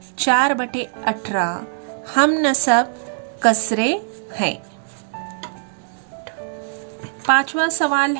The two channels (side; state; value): left; silent; digital silence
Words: 4/18 हम नसब कसरे हैं। पांचवा सवाल